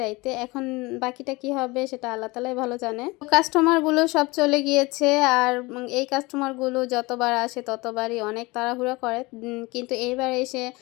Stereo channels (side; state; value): right; quieter; 23.4 dB